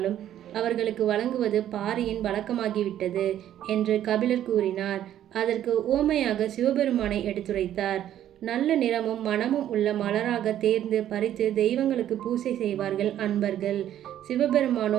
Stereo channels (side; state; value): left; quieter; 11.4 dB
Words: அவர்களுக்கு வழங்குவது பாரியின் வழக்கமாகிவிட்டது என்று கபிலர் கூறினார். அதற்கு உவமையாக சிவபெருமானை எடுத்துரைத்தார். நல்ல நிறமும் மனமும் உள்ள மலராக தேர்ந்து பறித்து தெய்வங்களுக்கு பூசை செய்வார்கள் அன்பர்கள்.